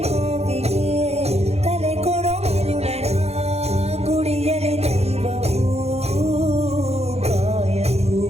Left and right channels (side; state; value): left; late; 0.31 ms